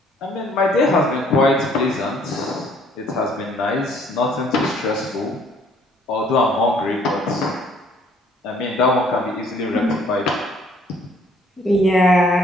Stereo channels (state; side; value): normal; both; correlation 0.61